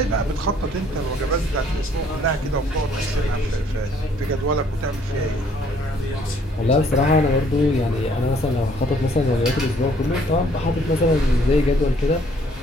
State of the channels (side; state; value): both; normal; correlation 0.62